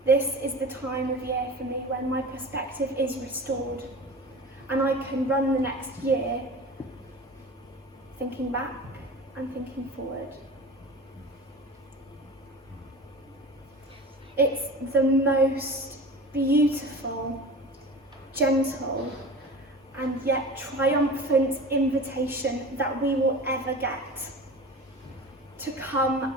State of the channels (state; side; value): normal; both; correlation 0.35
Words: This is the time of year for me when my perspective is restored and I can run the next year thinking back and thinking forward. It's the most beautiful, gentle, and yet triumphant invitation that we will ever get to come